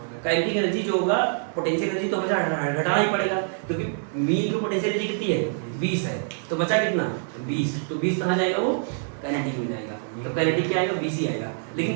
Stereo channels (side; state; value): left; silent; 61 dB below the other